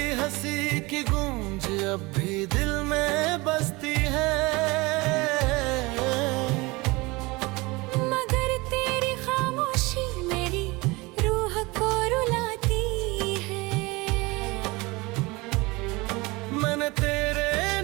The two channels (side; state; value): left; quieter; 23.7 dB